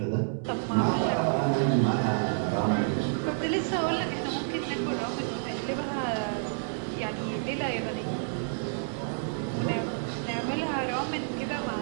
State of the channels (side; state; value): left; silent; 58 dB below the other